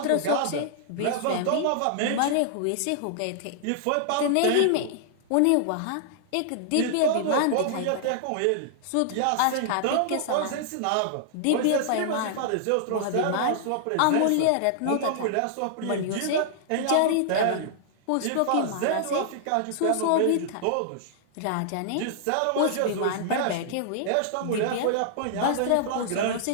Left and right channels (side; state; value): both; different; correlation -0.01